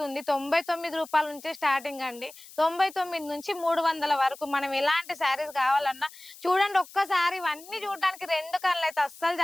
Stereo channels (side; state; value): left; noise; hiss, 19 dB below the sound